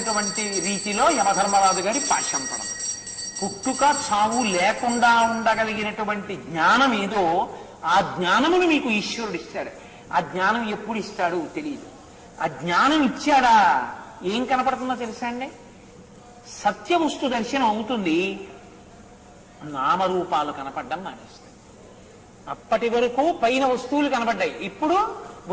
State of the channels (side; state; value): both; identical; correlation 1.00